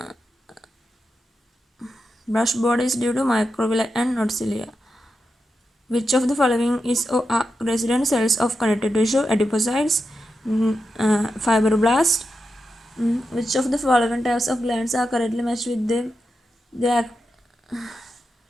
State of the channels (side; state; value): both; normal; correlation 0.88